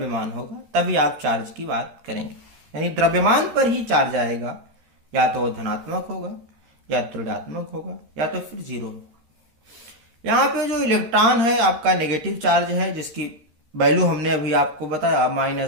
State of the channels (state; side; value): late; left; 13 ms